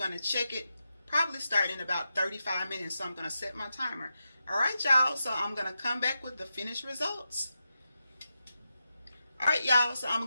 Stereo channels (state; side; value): inverted; both; correlation -0.88